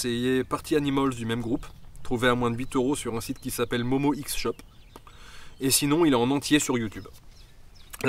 Party Animals du même groupe, trouvé à moins de 8 € sur un site qui s'appelle Momo X Shop. et sinon il est en entier sur YouTube.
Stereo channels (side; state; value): both; identical; correlation 1.00